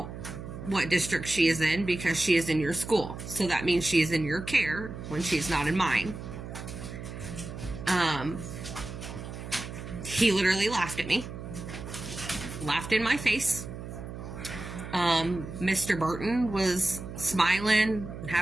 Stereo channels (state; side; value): noise; right; hum, 10 dB below the sound